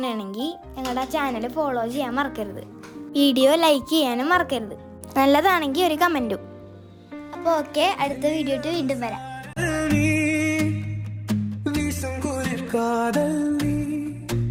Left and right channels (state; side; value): identical; both; correlation 1.00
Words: ഞങ്ങളുടെ ആ ചാനൽ ഫോളോ ചെയ്യാൻ മറക്കരുത്. വീഡിയോ ലൈക്ക് ചെയ്യാനും മറക്കരുത്. നല്ലതാണെങ്കിൽ ഒരു കമൻറ്റും. അപ്പോൾ ഓക്കെ, അടുത്ത വീഡിയോ വീണ്ടും വരാം.